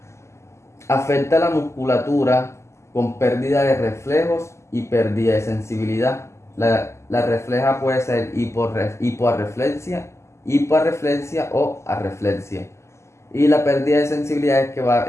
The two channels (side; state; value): right; late; 0.13 ms